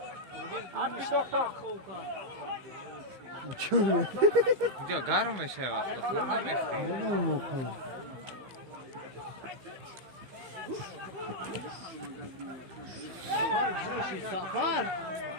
هرکی دکتر اینجا گرم میشه وقتا خود نمیخوام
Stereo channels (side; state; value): left; late; 15 ms